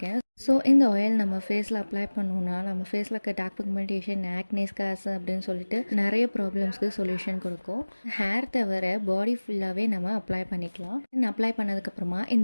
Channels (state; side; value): inverted; both; correlation -1.00